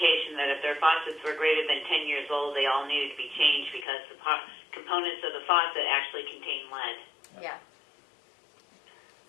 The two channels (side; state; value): right; drops out; at 3.9 s